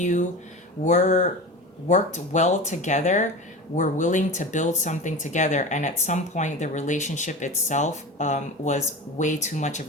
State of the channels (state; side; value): normal; both; correlation 0.30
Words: were worked well together, were willing to build something together, and at some point the relationship itself was way too much of